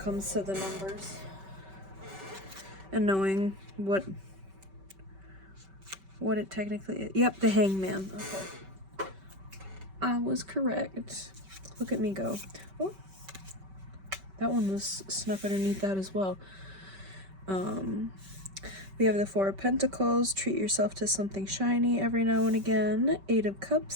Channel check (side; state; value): left; late; 5.2 ms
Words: to the numbers and knowing what it technically is. Yep, the Hangman. Okay. I was correct. Look at me go. Oh, that one was snuck underneath that as well. We have the 4 of Pentacles. Treat yourself to something shiny every now and again. 8 of